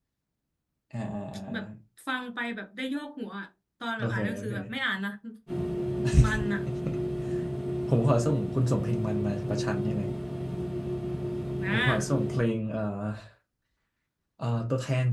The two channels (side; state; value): both; identical; correlation 1.00